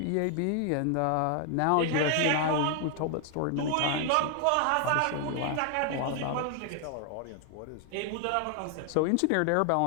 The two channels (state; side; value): different; both; correlation 0.00